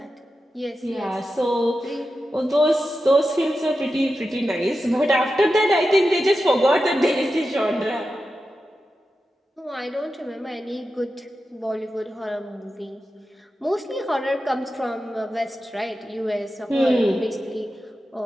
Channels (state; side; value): normal; both; correlation 0.91